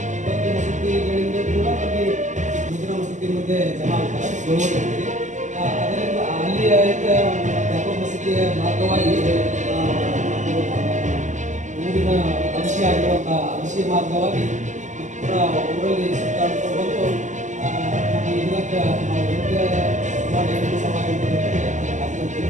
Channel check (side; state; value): left; late; 0.35 ms